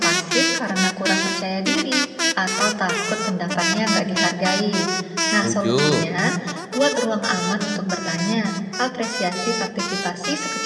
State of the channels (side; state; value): both; identical; correlation 1.00